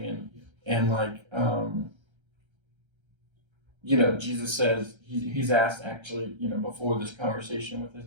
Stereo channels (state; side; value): late; left; 1.3 ms